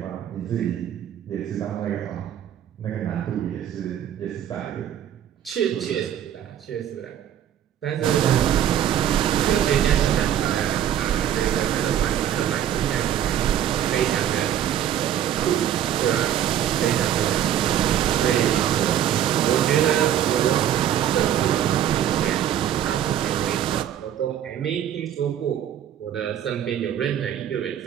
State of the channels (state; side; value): quieter; left; 10.5 dB